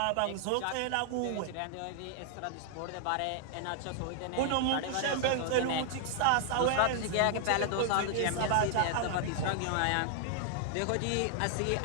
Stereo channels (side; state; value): both; different; correlation -0.01